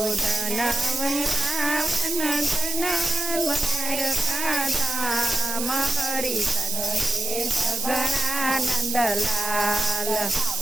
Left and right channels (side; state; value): right; noise; hiss, 3 dB below the sound